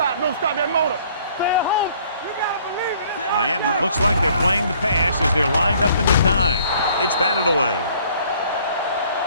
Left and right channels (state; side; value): inverted; both; correlation -0.58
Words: Don't stop that motor. Stay at home. You gotta believe it. Miami looks like they're playing the pass as they're lined up in the dime. It's batted away.